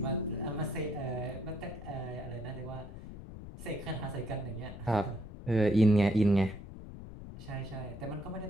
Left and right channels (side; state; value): left; noise; rumble, 12 dB below the sound